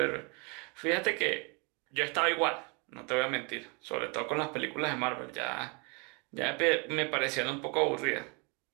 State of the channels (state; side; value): quieter; left; 31.9 dB